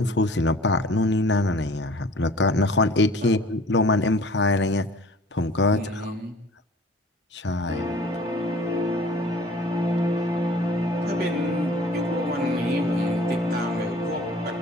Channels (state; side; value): normal; both; correlation 0.48